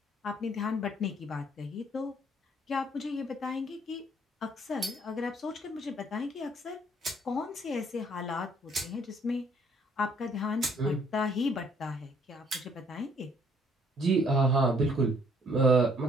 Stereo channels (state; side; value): normal; both; correlation 0.63